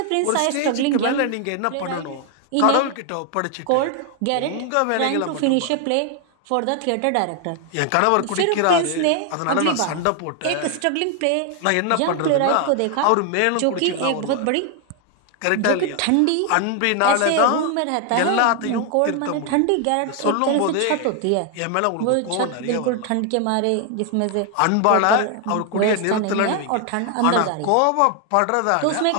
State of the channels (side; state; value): both; different; correlation 0.01